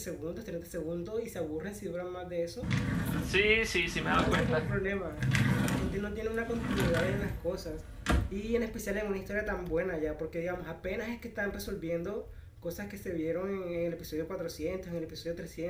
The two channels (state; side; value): identical; both; correlation 1.00